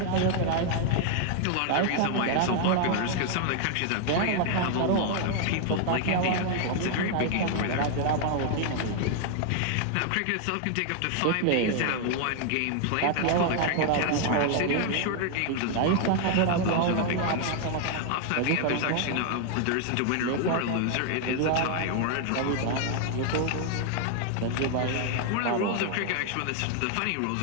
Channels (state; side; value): different; both; correlation 0.00